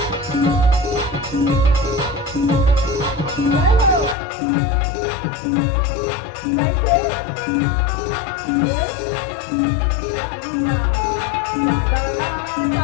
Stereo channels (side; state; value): right; drops out; at 4.2 s